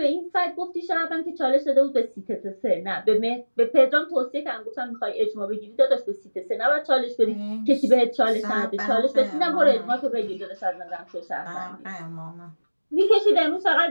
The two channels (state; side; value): inverted; both; correlation -1.00